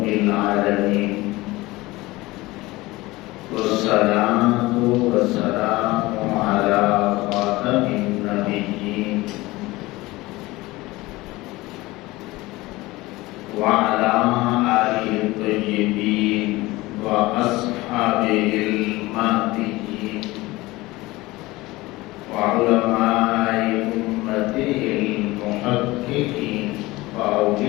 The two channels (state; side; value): quieter; right; 20.1 dB